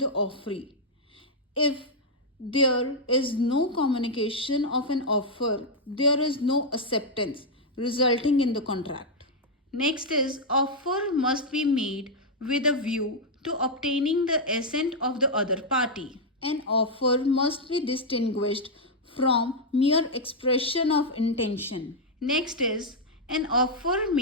offeree. If there is no communication of an offer, there is no acceptance resulting in the contract. Next is offer must be made with a view to obtaining the assent of the other party. An offer must be distinguished from mere expression of intention. Next is an offer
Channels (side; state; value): both; normal; correlation -0.03